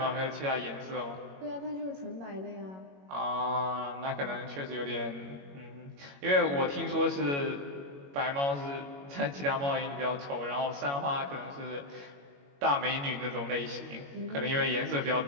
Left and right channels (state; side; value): late; left; 21 ms